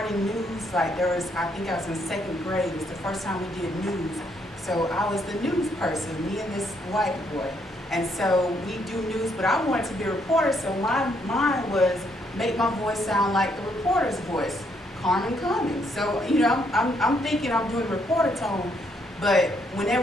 news, like there was, I think I was in 2nd grade, it was the first time we did news. So I was the news person, me and this white boy. And so we do news, but I wanted to be a reporter, so mine was make my voice sound like the reporter's voice, Carmen Cummings. So, you know, I'm thinking I'm doing reporter tone, but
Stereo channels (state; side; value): normal; both; correlation 0.72